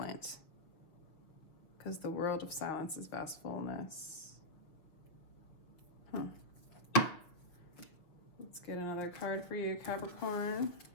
because the world of silence is vast fullness. Let's get another card for you, Capricorn.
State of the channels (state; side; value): late; right; 6.2 ms